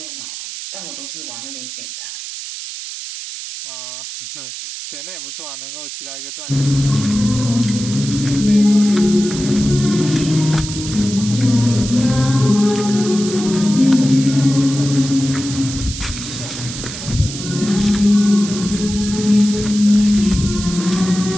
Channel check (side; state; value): right; noise; hiss, 9 dB below the sound